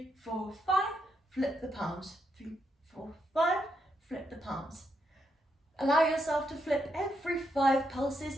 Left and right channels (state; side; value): normal; both; correlation 0.80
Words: 4, 5. Flip the palms. 3, 4, 5. Flip the palms. Allow yourself to flip every 5